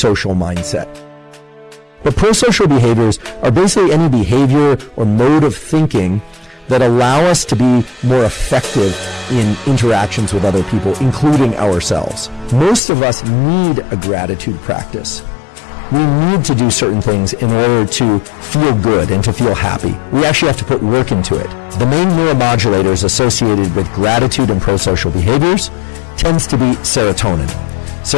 mindset. But pro-social behaviors are basically any behavior or mode of thinking that allow us to be more effective in interactions with other people, including ourselves. Most of us need a gratitude practice. We need to do certain things in order to feel good and to feel happy. We actually have to put work into it. The main neuromodulators associated with gratitude and pro-social behaviors tends to be serotonin.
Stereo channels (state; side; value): drops out; right; at 12.8 s